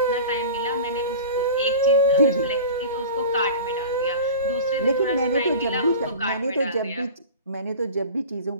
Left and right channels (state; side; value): inverted; both; correlation -0.36